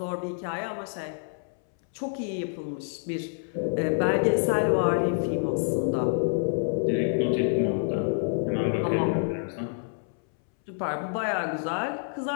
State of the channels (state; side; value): silent; right; 60 dB below the other